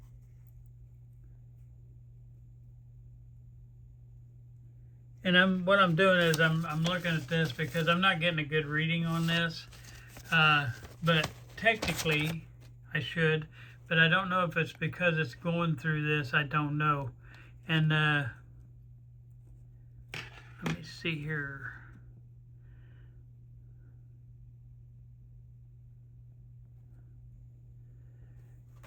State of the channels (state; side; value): identical; both; correlation 1.00